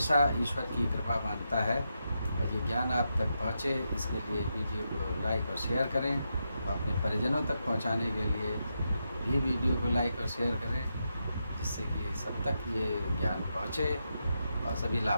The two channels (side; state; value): both; inverted; correlation -0.85